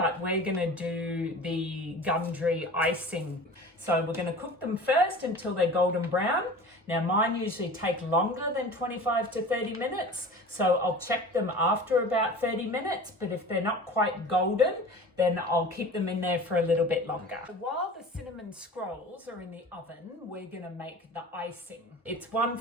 we're gonna do the Gundry icing. So we're gonna cook them first until they're golden brown. Now mine usually take longer than 25 to 30 minutes, so I'll check them after about 30 minutes, but if they're not quite golden, then I'll keep them in there for a little bit longer. While the cinnamon scrolls are in the oven, we're gonna make the icing. It's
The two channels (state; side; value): normal; both; correlation 0.38